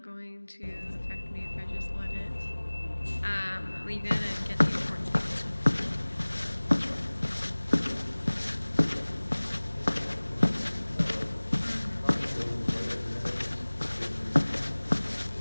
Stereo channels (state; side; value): inverted; both; correlation -1.00